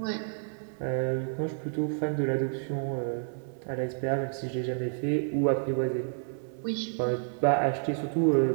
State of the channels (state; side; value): silent; left; digital silence